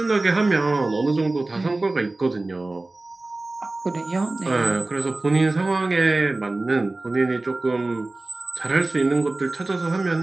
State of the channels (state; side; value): quieter; left; 3.0 dB